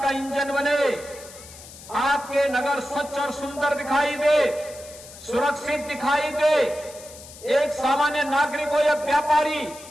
इंजन बने। आपके नगर स्वच्छ और सुंदर दिखाई दे, सुरक्षित दिखाई दे। एक सामान्य नागरिक हो या व्यापारी,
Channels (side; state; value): left; noise; hiss, 17 dB below the sound